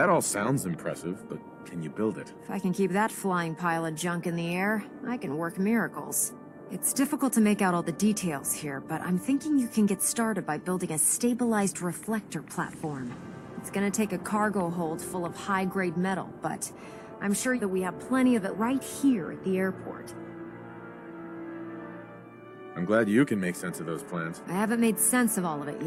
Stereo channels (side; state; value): both; identical; correlation 1.00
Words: all sounds impressive, but can you build it? If I can keep that flying pile of junk in the air, I can work miracles. It's difficult to make out all the details here, but I'm thinking you can get started by building a stabilized reflector platform. It's gonna take a cargo hold full of high-grade metal, but I'm sure that we have plenty of it right here at the airport. I'm glad you can make sense of those plans. I haven't made sense of all of it